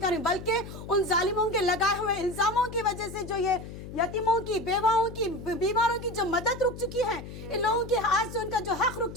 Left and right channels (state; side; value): noise; left; hum, 12 dB below the sound